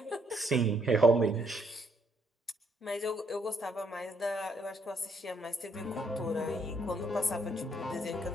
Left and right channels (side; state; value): both; normal; correlation 0.71